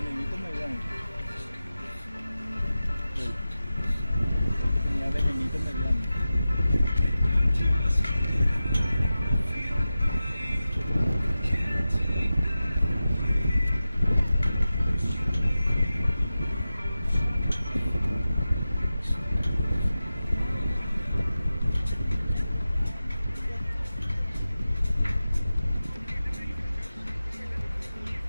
mediano. El que tenía venenito mediano.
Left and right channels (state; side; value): inverted; both; correlation -0.94